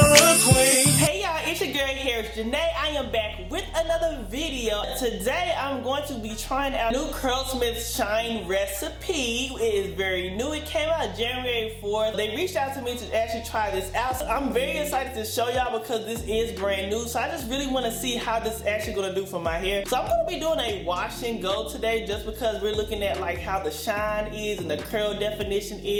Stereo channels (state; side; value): identical; both; correlation 1.00